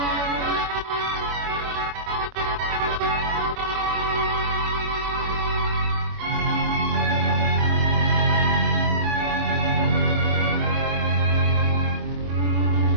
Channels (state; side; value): late; left; 25 ms